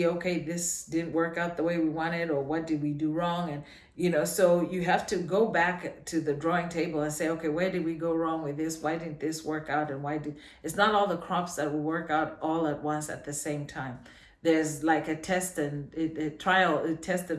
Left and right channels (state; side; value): identical; both; correlation 1.00